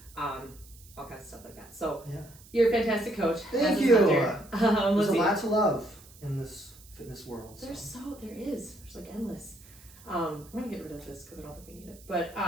all kinds of stuff like that. So Yeah. you're a fantastic coach. Thank you. There's There's a lot to love in this fitness world. There is. There's like endless. I'm gonna get rid of this because I don't think we need it.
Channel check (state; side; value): noise; right; hiss, 23 dB below the sound